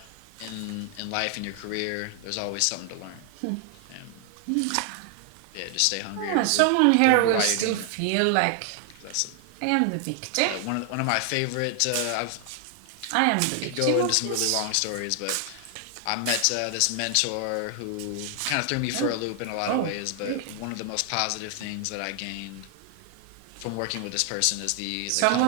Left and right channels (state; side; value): different; both; correlation 0.00